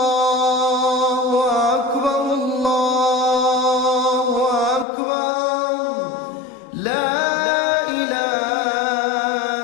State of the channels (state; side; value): drops out; right; at 4.9 s